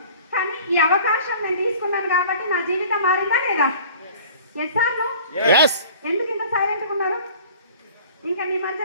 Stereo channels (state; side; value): inverted; both; correlation -0.47